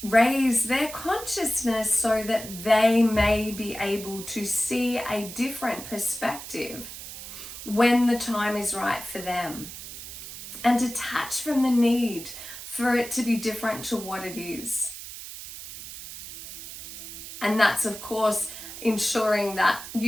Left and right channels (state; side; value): noise; right; hiss, 11 dB below the sound